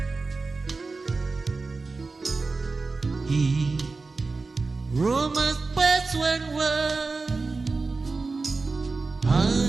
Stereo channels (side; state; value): left; quieter; 3.9 dB